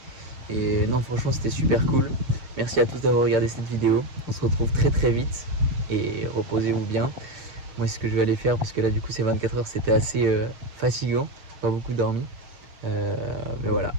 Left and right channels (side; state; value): left; late; 6.7 ms